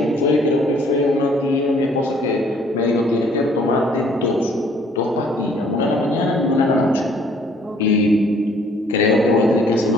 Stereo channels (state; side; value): normal; both; correlation 0.60